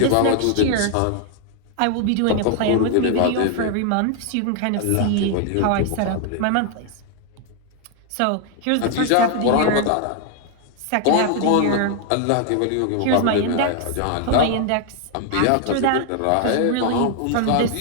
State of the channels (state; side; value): different; both; correlation 0.00